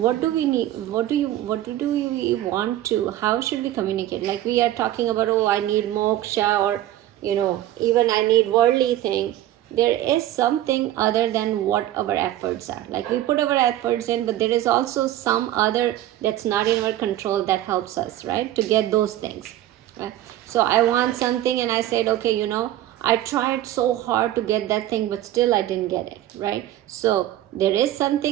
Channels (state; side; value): quieter; left; 13.7 dB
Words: do we need, what do we want to, how should we communicate? Like we are talking about, oh, I need moksha, or even I need worldly thing. there is something other than what our efforts are. Like we put our efforts in, but there is also some other that's not in our control that helps us, right, to get those things, right? So I want something and I said, okay, I tried so hard to get that thing, but still I didn't get it, right? So there is